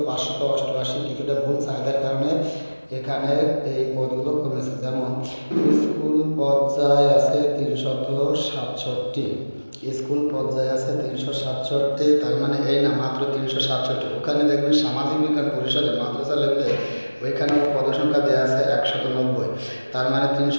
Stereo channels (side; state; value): both; inverted; correlation -1.00